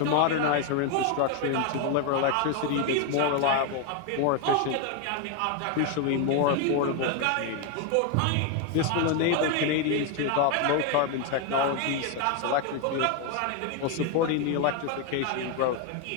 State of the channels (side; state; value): both; different; correlation 0.01